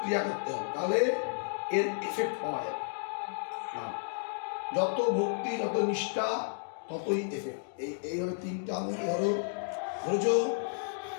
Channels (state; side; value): silent; right; digital silence